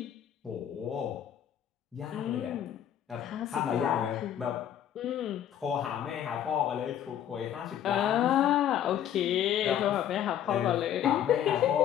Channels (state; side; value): quieter; right; 10.3 dB